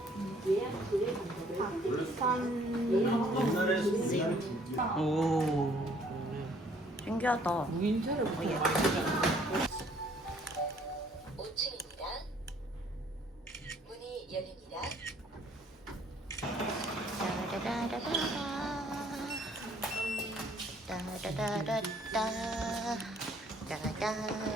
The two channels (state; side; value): normal; both; correlation 0.61